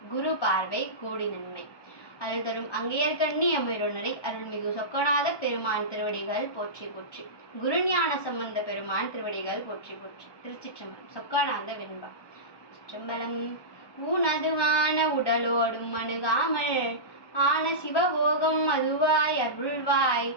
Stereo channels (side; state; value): right; late; 1.2 ms